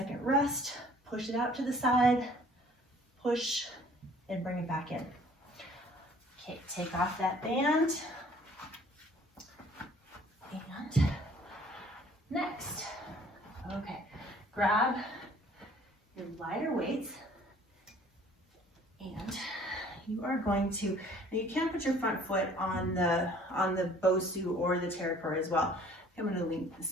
rest, push it out to the side, push and bring it back in. Okay, take off that band. And next, okay, grab your lighter weights, and you are going to, now you can put your front foot on the BOSU or the Terra Core as well. I'm going to lean to the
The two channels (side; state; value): both; normal; correlation 0.55